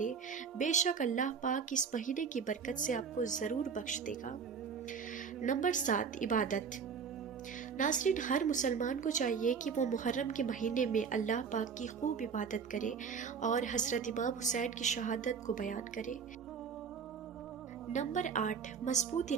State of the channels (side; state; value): left; quieter; 6.2 dB